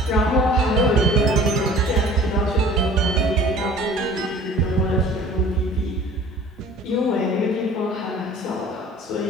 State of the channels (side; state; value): both; normal; correlation 0.47